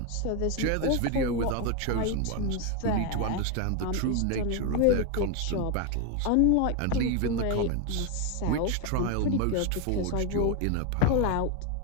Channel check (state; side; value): different; both; correlation 0.01